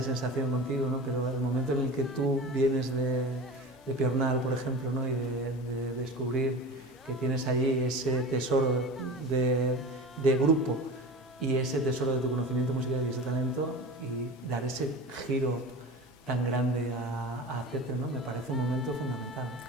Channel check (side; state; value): both; normal; correlation 0.33